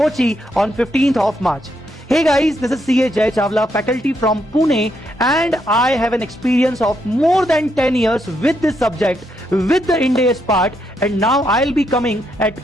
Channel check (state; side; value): normal; both; correlation 0.78